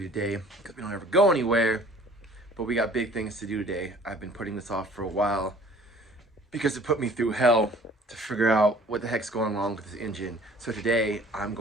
today because we don't ever go anywhere, but we got big things to do today. I've been putting this off for a while because it put me through hell to figure out what the heck's going wrong with this engine. So today I'm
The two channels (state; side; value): normal; both; correlation 0.51